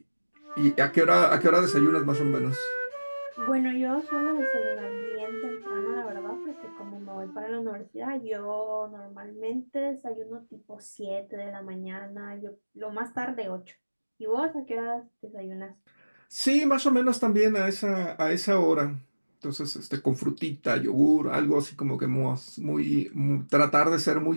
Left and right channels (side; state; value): both; inverted; correlation -1.00